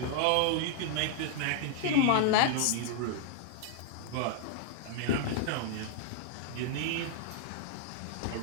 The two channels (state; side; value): different; both; correlation -0.01